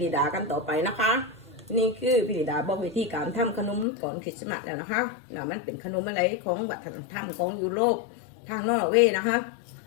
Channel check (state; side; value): drops out; right; at 3.9 s